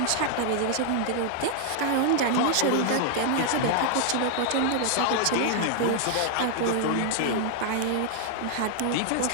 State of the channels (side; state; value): both; different; correlation 0.00